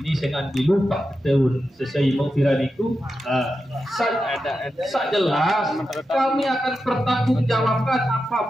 dengan dilupa tahun sesuai mau viral itu saat jelas kami akan pertanggungjawabkan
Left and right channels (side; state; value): both; normal; correlation 0.89